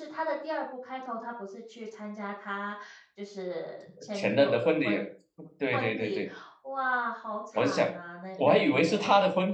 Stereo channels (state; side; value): identical; both; correlation 1.00